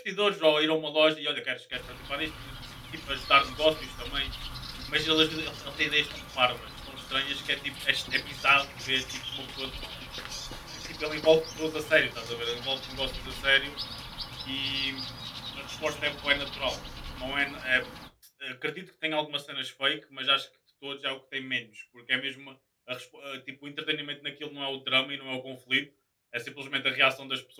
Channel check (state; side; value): identical; both; correlation 1.00